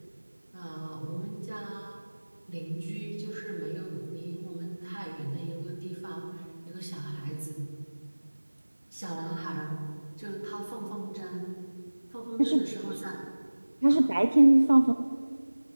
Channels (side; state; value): both; inverted; correlation -1.00